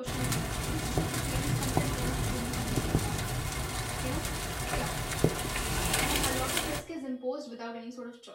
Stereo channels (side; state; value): both; identical; correlation 1.00